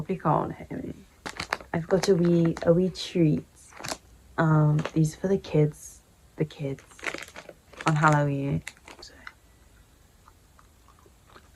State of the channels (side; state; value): both; identical; correlation 1.00